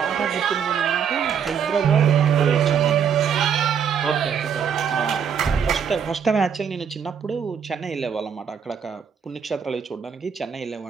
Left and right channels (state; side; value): quieter; left; 7.4 dB